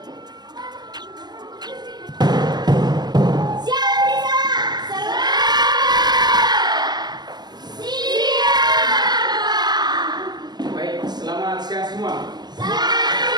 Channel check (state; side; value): late; left; 0.20 ms